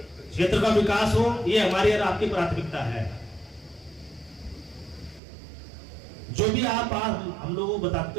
क्षेत्र का विकास हो ये हमारी और आपकी प्राथमिकता है। जो भी आप हम लोगों को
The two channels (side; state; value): left; drops out; at 5.2 s